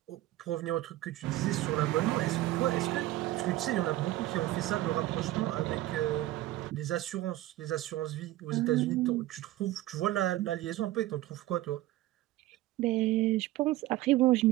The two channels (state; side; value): quieter; left; 15.9 dB